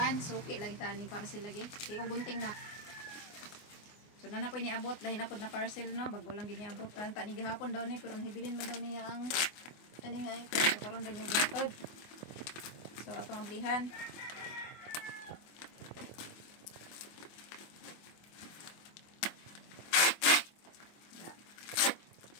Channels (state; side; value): late; right; 24 ms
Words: suki lang tani parcel lagi. Kay kung gunting na. So na po iniabot lahi na pod na parcel no, bago lang giniabot tan ta ni gihapon daw ni pero nahibilin man daw niya ang ani nga ito so karon ba niya gatod. So atong ablihan.